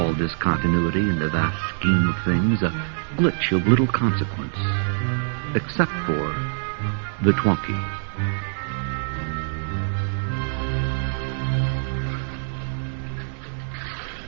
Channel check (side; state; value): left; silent; 62 dB below the other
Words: discontinuity in the vast scheme of things, a glitch of little consequence, except for the Twonky.